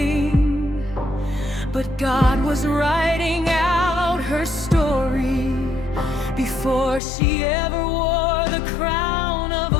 but God was writing out her story before she ever wore the crown of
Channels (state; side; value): drops out; right; at 7.0 s